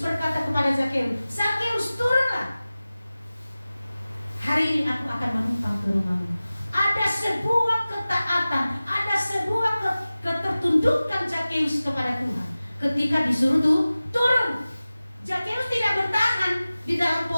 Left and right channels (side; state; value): both; inverted; correlation -0.97